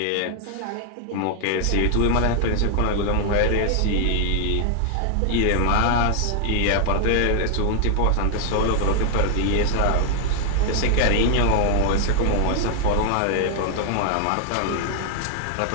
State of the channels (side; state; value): both; different; correlation 0.00